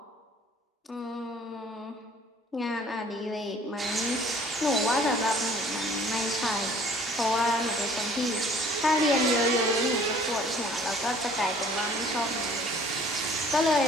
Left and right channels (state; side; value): normal; both; correlation 0.54